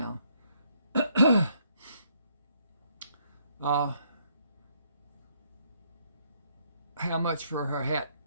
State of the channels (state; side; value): inverted; both; correlation -0.70